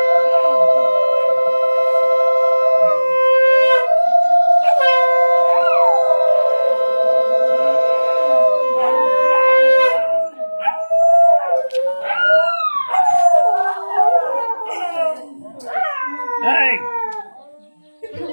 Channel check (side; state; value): both; inverted; correlation -1.00